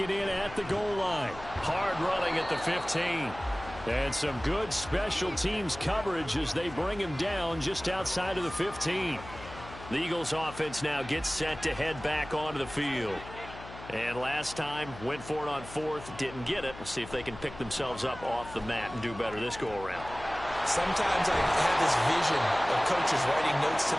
in at the goal line. Hard running at the 15. And some good special teams coverage as they bring him down just outside of the 15. The Eagles offense now gets set to head back onto the field. And last time, went for it on 4th, didn't get it. We'll see if they can pick themselves up off the mat and do better this go-around. Sometimes I have this vision of coaches writing notes to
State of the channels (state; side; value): noise; left; hum, 15 dB below the sound